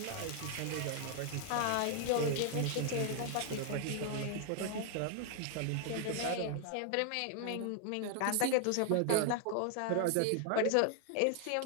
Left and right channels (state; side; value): different; both; correlation 0.00